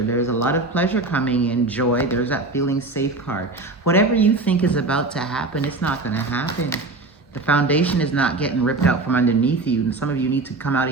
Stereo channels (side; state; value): left; quieter; 3.3 dB